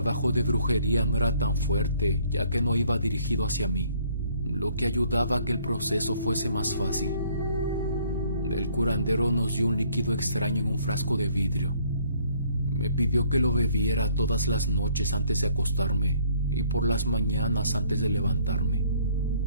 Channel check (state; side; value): inverted; both; correlation -0.62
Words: de brujería no era tan fuerte, ya que no iba dirigido hacia mí, lo que ayudaba a que el proceso fuese más fácil. El curandero nos dio un líquido extraño en un frasco de vidrio. Me pidió que lo bebiera todas las noches antes de acostarme y por las mañanas antes de levantarme.